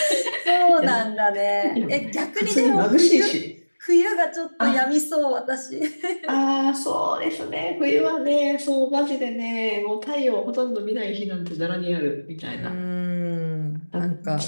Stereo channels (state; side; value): inverted; both; correlation -1.00